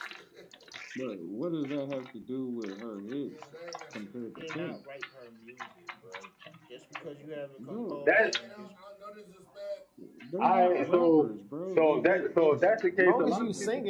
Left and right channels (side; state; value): both; identical; correlation 1.00